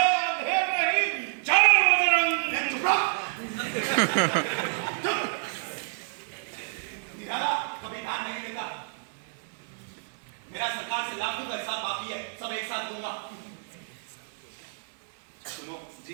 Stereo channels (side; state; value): left; silent; 59 dB below the other